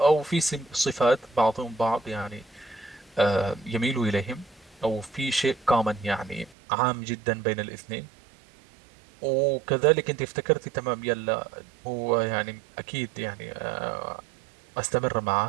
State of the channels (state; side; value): drops out; left; at 6.6 s